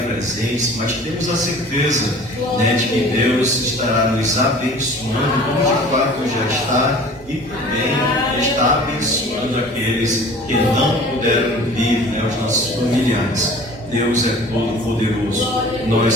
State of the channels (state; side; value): normal; both; correlation 0.45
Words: presentes, mas temos a certeza de que Deus estará nos abençoando, como de fato já está, e também está abençoando aqueles que não puderam vir, os nossos familiares. Deus é todo poderoso.